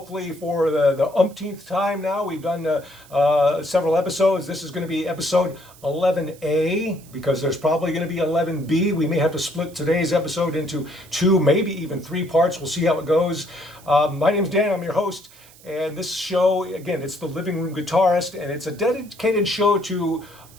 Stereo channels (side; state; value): right; noise; hiss, 24 dB below the sound